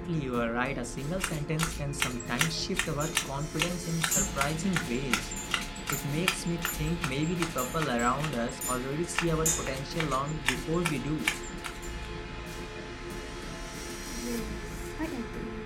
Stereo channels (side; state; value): both; identical; correlation 1.00